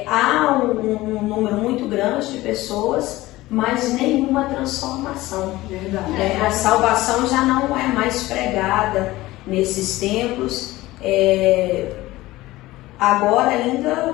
há um número muito grande de pessoas, mas nenhuma transformação. Verdade. A salvação já não é mais pregada nesses templos, agora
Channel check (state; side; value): quieter; right; 18.0 dB